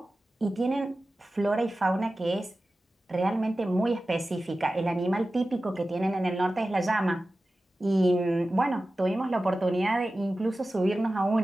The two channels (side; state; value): both; normal; correlation 0.95